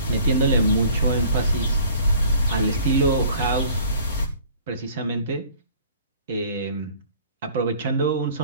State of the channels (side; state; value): both; inverted; correlation -0.52